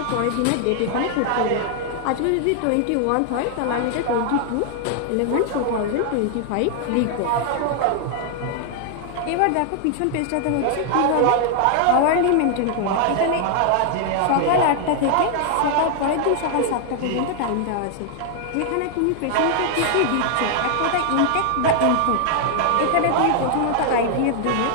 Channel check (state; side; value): different; both; correlation 0.00